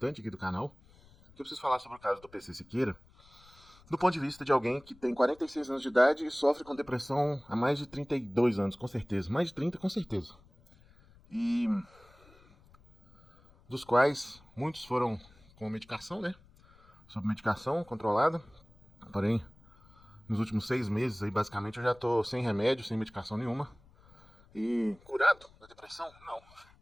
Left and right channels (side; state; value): left; noise; rumble, 27 dB below the sound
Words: aqui do canal. Que eu preciso falar sobre o caso do PC Siqueira, do ponto de vista de alguém que tem 46 anos de idade e sofre com depressão há mais de 32 anos, com certeza. Mais de 30, com certeza. E dos quais muitos foram com medicação, né? Sob medicação controlada. Porém, nos últimos 6 meses, aí, basicamente, eu já tô sem remédio, sem medicação nenhuma. E curado da depressão? Não.